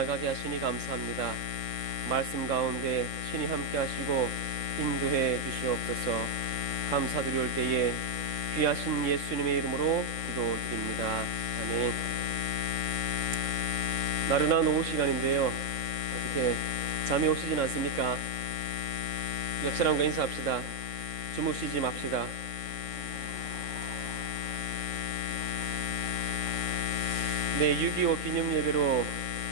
하시니 감사합니다. 말씀 가운데 신이 함께 하시고 인도해 주시옵소서. 감사드리올 때에 귀하신 예수님의 이름으로 기도드립니다. 아멘. 나른한 오후 시간인데요, 어떻게 잠이 오시진 않습니까? 옆 사람과 인사합시다. 주무시지 맙시다. 네, 6.25 기념 예배로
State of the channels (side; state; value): left; late; 3.6 ms